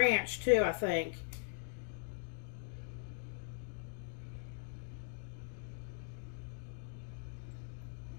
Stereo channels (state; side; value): silent; right; digital silence